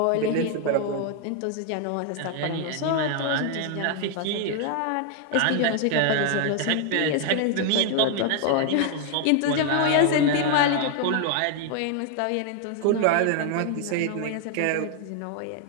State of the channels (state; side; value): different; both; correlation 0.00